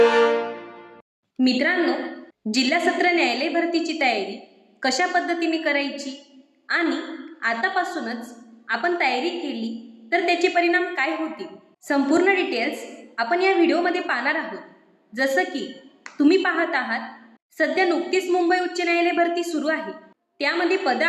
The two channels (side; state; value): both; identical; correlation 1.00